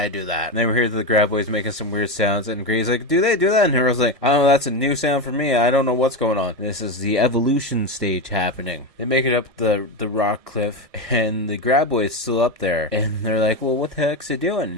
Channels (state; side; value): late; left; 1.6 ms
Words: do that? And then we hear the graboids making some weird sounds, and Grady's like, do they do that? And Earl's like, I don't know, that's a new sound for me. I don't know what's going on. This is the evolution stage happening. They make it up the rock cliff, and the graboid's still up there, and they're like, well, what the heck's it